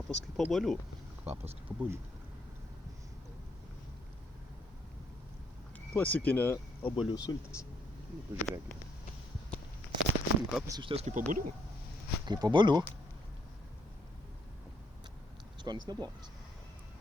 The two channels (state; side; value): normal; both; correlation 0.72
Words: kaip obuolių. Kvapas kaip obuolių. Klasikinė obuolių sultis. Pažiūrėkime. Kvapas iš ties kaip obuolių. Kaip obuolių. Skonis neblogas.